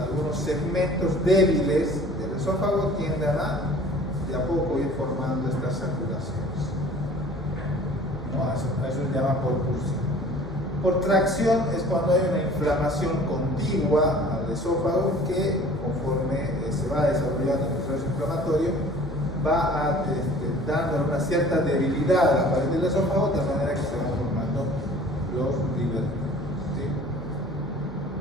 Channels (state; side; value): normal; both; correlation 0.48